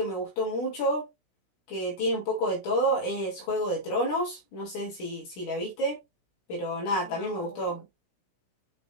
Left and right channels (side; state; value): right; late; 16 ms